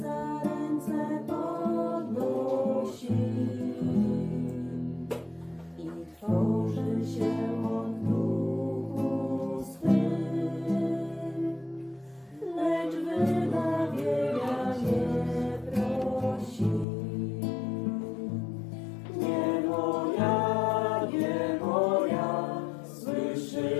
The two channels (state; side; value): drops out; right; at 16.9 s